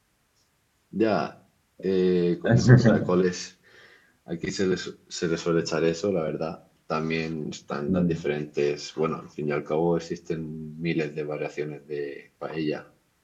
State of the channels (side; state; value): both; identical; correlation 1.00